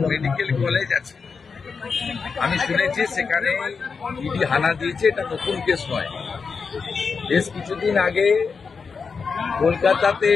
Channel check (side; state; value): right; quieter; 5.3 dB